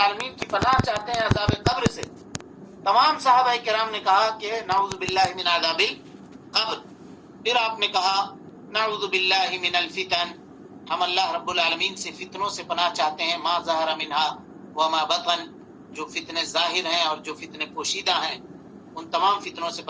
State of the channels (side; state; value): both; identical; correlation 1.00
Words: کی پناہ چاہتے ہیں عذاب قبر سے۔ تمام صحابہ کرام نے کہا کہ نعوذ باللہ من عذاب القبر۔ پھر آپ نے کہا نعوذ باللہ من الفتن، ہم اللہ رب العالمین سے فتنوں سے پناہ چاہتے ہیں، ما ظہر منہا وما بطن، جو فتنے ظاہر ہیں اور جو فتنے پوشیدہ ہیں، ان تمام فتنوں سے